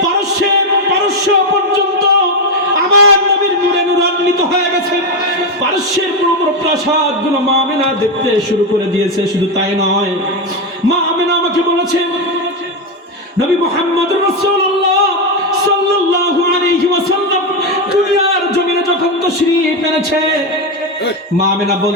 পারস্য পর্যন্ত আমার নবীর নূরে নূরান্বিত হয়ে গেছে। পারস্যের বড় প্রাসাদ গুলো মা আমেনা দেখতে শুরু করে দিয়েছে। শুধু তাই নয়, মা আমেনা আমাকে বলেছে, নবী মুহাম্মদুর রাসূলুল্লাহ সাল্লাল্লাহু আলাইহি ওয়াসাল্লাম দুনিয়ার জমিনে যখন তাশরীফ এনেছে, মা আমেনা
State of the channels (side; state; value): both; normal; correlation 0.09